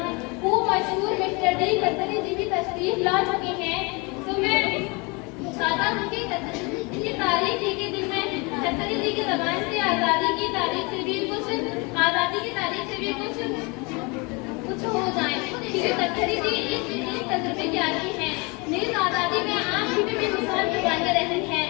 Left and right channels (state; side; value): quieter; right; 28.7 dB